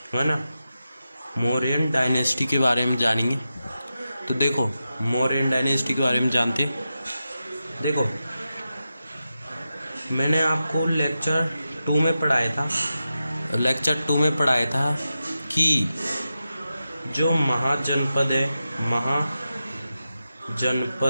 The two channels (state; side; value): inverted; both; correlation -0.91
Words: है ना। मौर्यन डायनेस्टी के बारे में जानेंगे। तो देखो, मौर्यन डायनेस्टी के बारे में जानते हैं। देखो, मैंने आपको लेक्चर 2 में पढ़ाया था कि जो महाजनपद है,